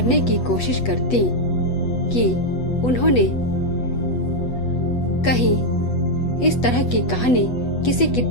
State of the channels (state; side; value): late; right; 8.1 ms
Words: की कोशिश करती कि उन्होंने कहीं इस तरह की कहानी किसी